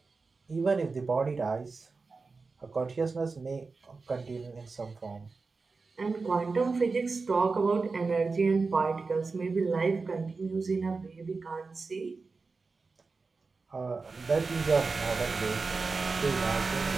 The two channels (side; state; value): left; quieter; 4.2 dB